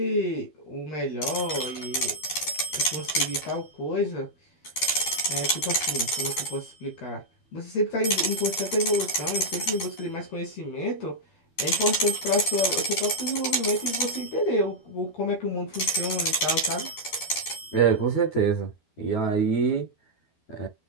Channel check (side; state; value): right; late; 12 ms